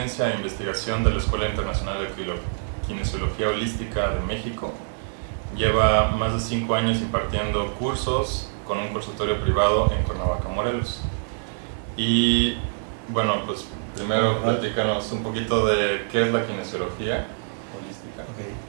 e investigación de la Escuela Internacional de Kinesiología Holística de México. Lleva más de 5 años impartiendo cursos con un consultorio privado en Cuernavaca, Morelos. Y bueno, pues primero platícanos un poquito de qué es la kinesiología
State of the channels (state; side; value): silent; left; 62 dB below the other